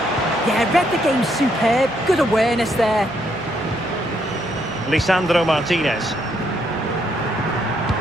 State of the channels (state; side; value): noise; right; hum, 21 dB below the sound